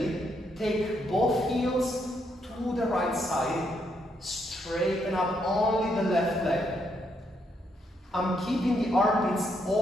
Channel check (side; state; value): both; normal; correlation 0.76